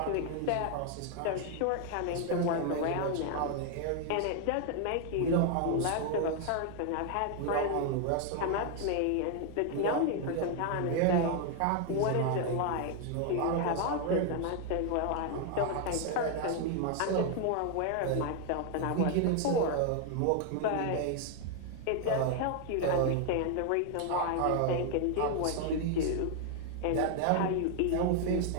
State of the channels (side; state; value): both; different; correlation 0.00